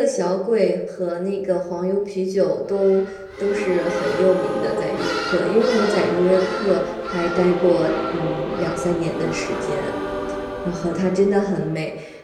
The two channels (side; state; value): both; identical; correlation 1.00